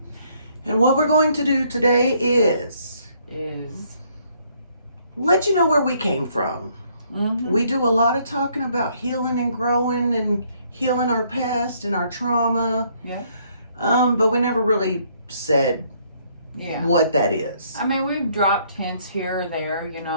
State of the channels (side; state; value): both; inverted; correlation -0.67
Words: And what we're going to do today is let you know where we came from. Mm-hmm. We do a lot of talking about healing and growing and healing our past and our trauma. Yeah. But we never really said what that is. I mean, we've dropped hints here or there,